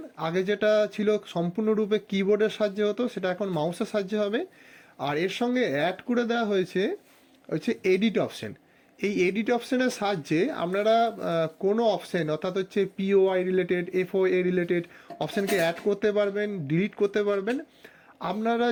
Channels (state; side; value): identical; both; correlation 1.00